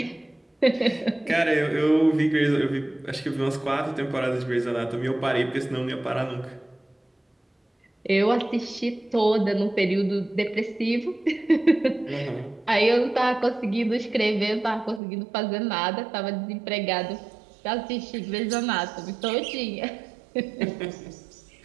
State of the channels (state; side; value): drops out; left; at 15.0 s